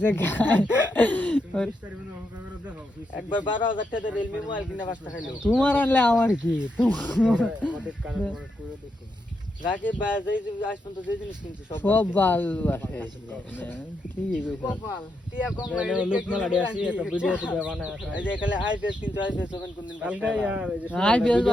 খায় একবার 12000 টাকা রিয়েলমি মোবাইল কিনা বাস্তা খাইলো তোমার আনলে আমার কি রাকে বাজাই আজ পর্যন্ত যে জিনিস কিনছি সব বাল আছে ঠিকই কইছো কপাল টিয়া কম লাগে লোক মালাডি আসি একটা ভিডিও তে বানায় এই যে এখানে আইপিএস 300 কোন দিন কালকে यार আইপিএস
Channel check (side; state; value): both; normal; correlation 0.82